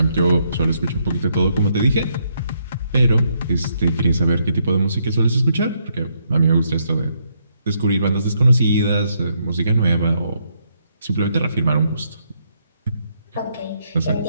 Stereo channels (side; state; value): both; inverted; correlation -0.75